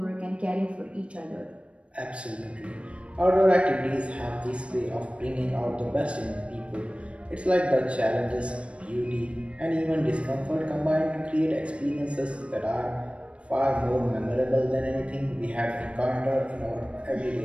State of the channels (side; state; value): left; late; 0.060 ms